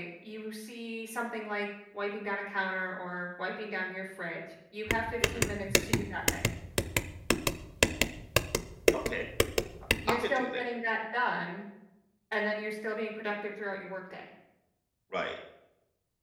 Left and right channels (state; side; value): identical; both; correlation 1.00